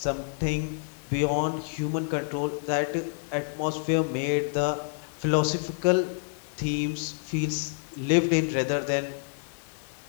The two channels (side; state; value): right; silent; digital silence